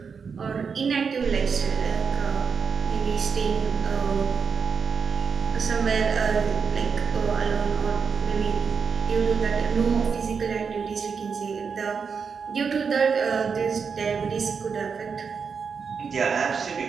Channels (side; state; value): left; quieter; 5.9 dB